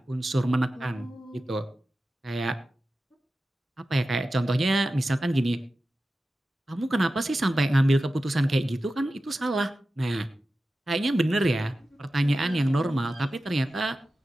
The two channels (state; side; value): normal; both; correlation 0.93